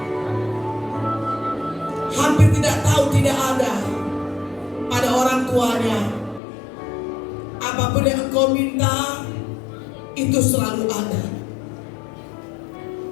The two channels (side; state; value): right; drops out; at 6.4 s